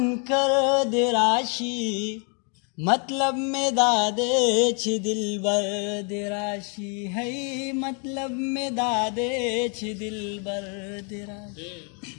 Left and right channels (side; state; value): right; quieter; 37.9 dB